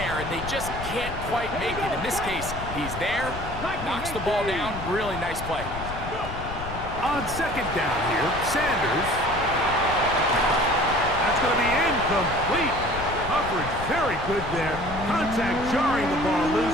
and they just can't quite make it? In this case, he's there, knocks the ball down, really nice play. On 2nd down here, Sanders. That's going to be incomplete. Coverage very good there. Contact jarring the ball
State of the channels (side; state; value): left; noise; rumble, 9 dB below the sound